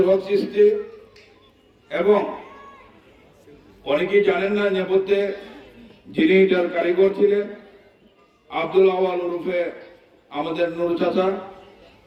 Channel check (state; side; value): identical; both; correlation 1.00